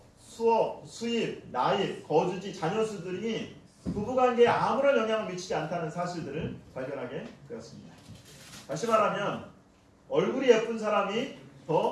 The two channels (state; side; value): identical; both; correlation 1.00